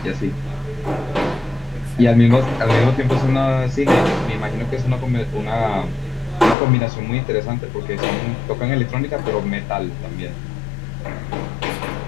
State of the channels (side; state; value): right; drops out; at 6.6 s